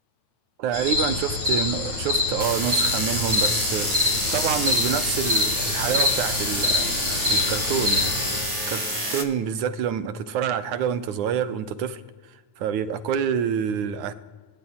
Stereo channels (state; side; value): late; left; 9.3 ms